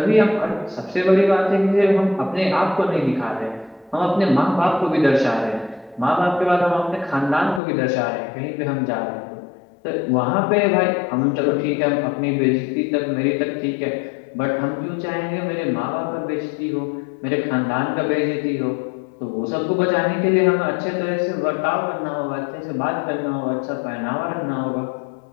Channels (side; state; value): right; drops out; at 7.6 s